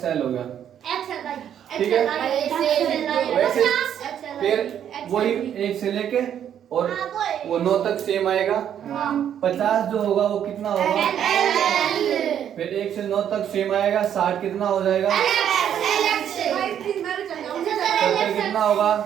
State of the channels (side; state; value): left; quieter; 9.5 dB